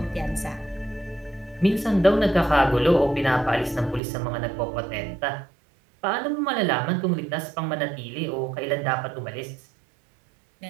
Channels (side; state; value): left; drops out; at 4.0 s